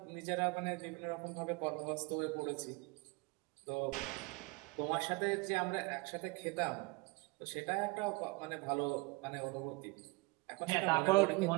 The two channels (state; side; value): quieter; left; 25.5 dB